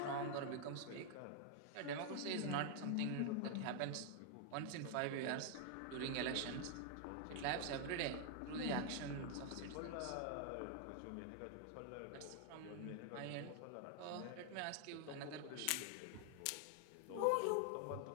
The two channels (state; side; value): different; both; correlation 0.00